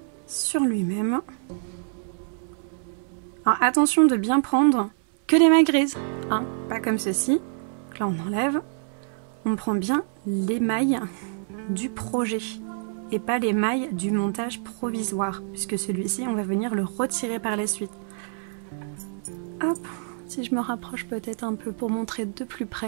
sur lui-même. Alors attention de bien prendre que les mailles grises, hein, pas comme ceci. Donc là on enlève, on prend bien les mailles du projet et pas les mailles du montage provisoire, puisque celui-ci on va venir le retirer par la suite. Hop, si je me rapproche peut-être un peu pour montrer de plus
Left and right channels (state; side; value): silent; left; 60 dB below the other